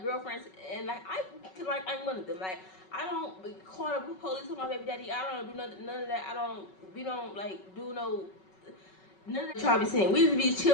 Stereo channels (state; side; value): late; right; 5.3 ms